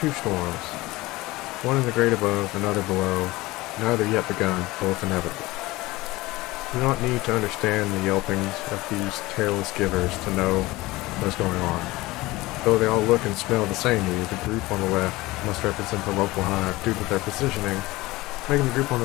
storms. One in the great above, another below. Neither yet begun, both inevitable. You do not need to understand the yelpings of these tailless givers to know what is going on. Though they all look and smell the same to you, the group on the left must represent the local hive due to their positioning, making the group on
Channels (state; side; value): quieter; right; 20.0 dB